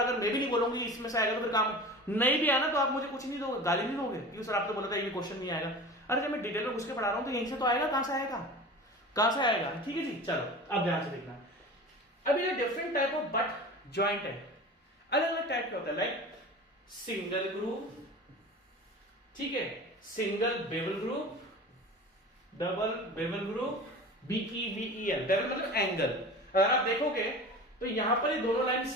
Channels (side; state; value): both; normal; correlation 0.35